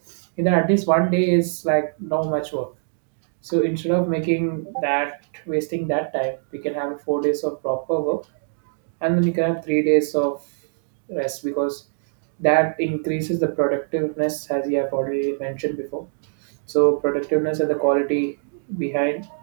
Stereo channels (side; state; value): left; silent; digital silence